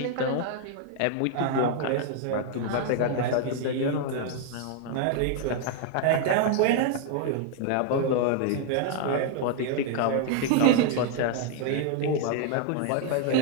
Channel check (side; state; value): both; different; correlation 0.00